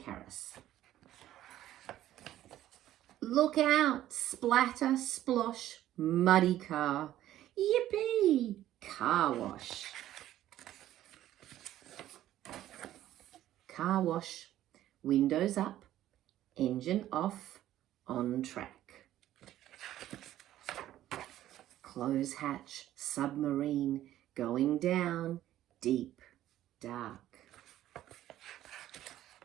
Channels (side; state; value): left; quieter; 13.2 dB